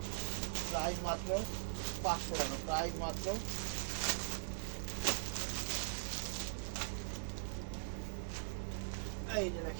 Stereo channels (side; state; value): left; silent; digital silence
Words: প্রাইস মাত্র 500 টাকা, প্রাইস মাত্র। এই যে